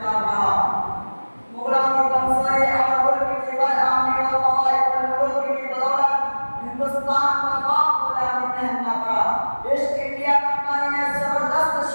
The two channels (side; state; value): both; inverted; correlation -1.00